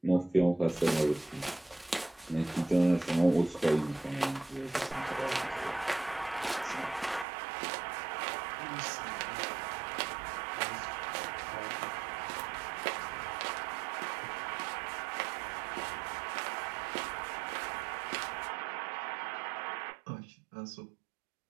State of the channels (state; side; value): drops out; left; at 7.2 s